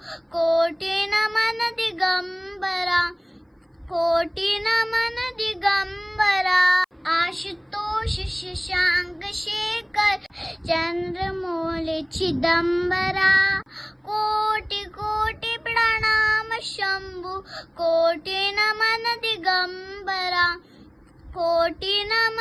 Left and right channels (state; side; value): identical; both; correlation 1.00